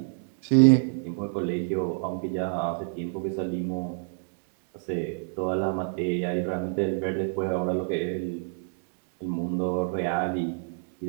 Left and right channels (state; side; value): silent; left; digital silence